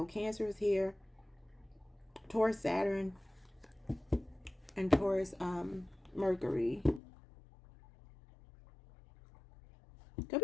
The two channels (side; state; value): right; drops out; at 7.0 s